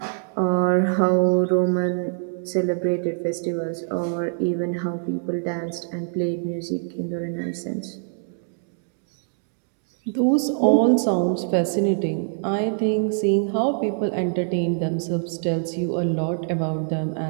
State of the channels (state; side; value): silent; left; digital silence